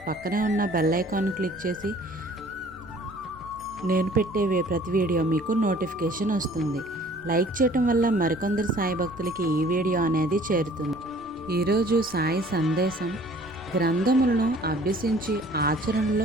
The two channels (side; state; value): both; normal; correlation 0.53